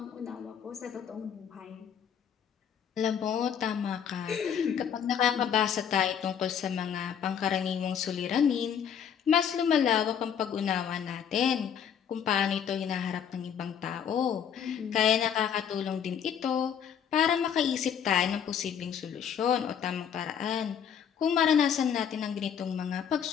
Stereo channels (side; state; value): right; quieter; 8.2 dB